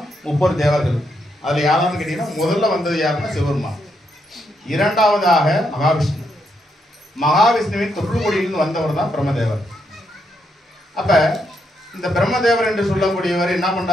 30 தேவர்கள். அதில் யாரான்னு கேட்டீங்கன்னா முதல்ல வந்தது யாருன்னா சிவபெருமான். இரண்டாவதாக மகாவிஷ்ணு. மகாவிஷ்ணுவின் தொற்றுக்கொடியிலிருந்து வந்தவர் தான் பிரம்மதேவர். அப்போ இந்த பிரம்மதேவர் என்று சொல்லக்கூடியவர் என்ன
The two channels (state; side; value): normal; both; correlation 0.79